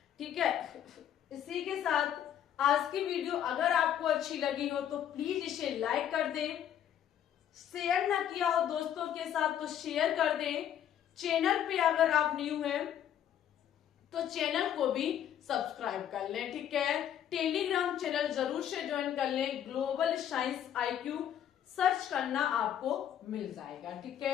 ठीक है, इसी के साथ आज की वीडियो अगर आपको अच्छी लगी हो तो प्लीज इसे लाइक कर दें, शेयर ना किया हो दोस्तों के साथ तो शेयर कर दें। चैनल पे अगर आप न्यू हैं तो चैनल को भी सब्सक्राइब कर लें। ठीक है, टेलीग्राम चैनल जरूर से ज्वाइन कर लें, ग्लोबल साइंस IQ सर्च करना आपको मिल जाएगा। ठीक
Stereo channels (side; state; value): right; quieter; 10.1 dB